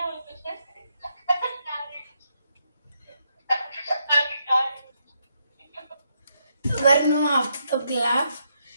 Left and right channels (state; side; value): inverted; both; correlation -0.79